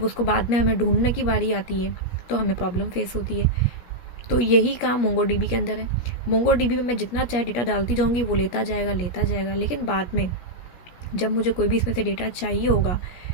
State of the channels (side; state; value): right; late; 17 ms